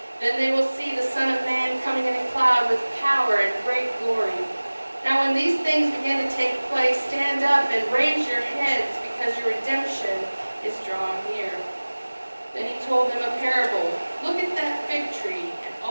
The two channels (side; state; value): both; inverted; correlation -1.00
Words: Then they will see the Son of Man coming in a cloud with power and great glory. Now when these things begin to take place, stand up and raise your heads, because your redemption is drawing near. Then he told them a parable. Look at that fig tree and